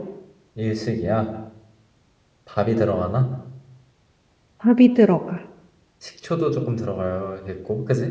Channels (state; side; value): identical; both; correlation 1.00